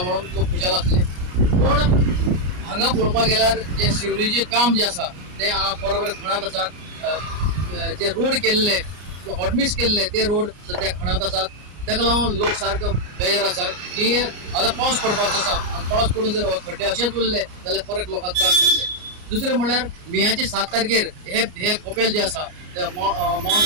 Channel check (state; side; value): late; left; 33 ms